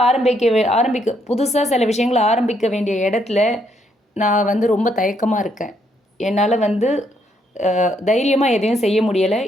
புதுசாக சில விஷயங்களை ஆரம்பிக்க வேண்டிய இடத்துல நான் வந்து ரொம்ப தயக்கமாக இருக்கேன். என்னால் வந்து தைரியமாக எதையும் செய்ய முடியலை.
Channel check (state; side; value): normal; both; correlation 0.73